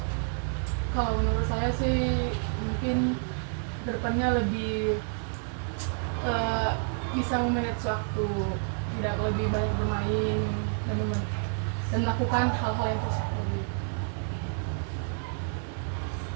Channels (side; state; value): left; silent; 58 dB below the other